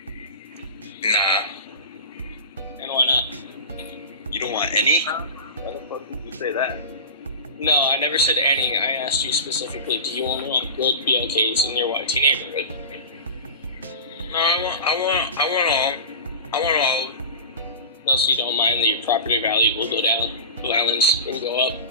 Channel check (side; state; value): both; inverted; correlation -0.30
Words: Nah. And why not? You don't want any? Why the fuck did you say that? No, I never said any. I asked you specifically, do you only want good BLKs in your YT neighborhood? No, I want all. Unless you don't mind that your property value will go down, violence will go up.